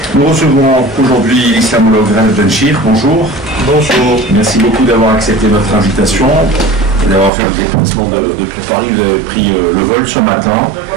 Nous recevons aujourd'hui l'islamologue Ralph Benchir. Bonjour. Bonjour. Merci beaucoup d'avoir accepté notre invitation et d'avoir fait le déplacement depuis Paris. Vous avez pris le vol ce matin.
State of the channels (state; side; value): drops out; left; at 7.3 s